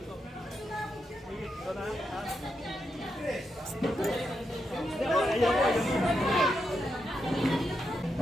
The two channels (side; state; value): both; normal; correlation 0.84